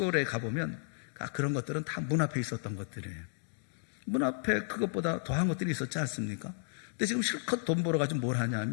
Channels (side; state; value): right; silent; digital silence